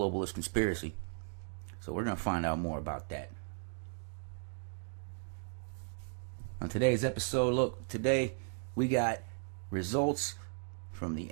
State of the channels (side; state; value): left; silent; digital silence